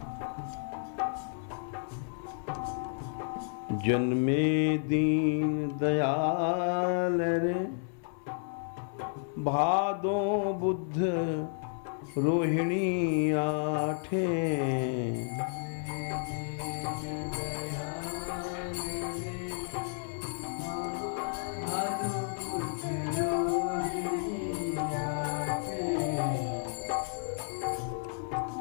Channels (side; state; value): right; silent; 57 dB below the other